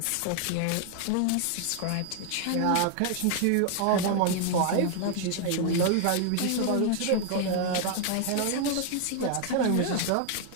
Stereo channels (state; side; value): different; both; correlation 0.00